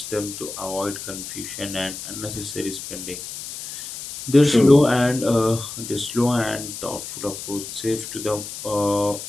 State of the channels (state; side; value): noise; left; hiss, 9 dB below the sound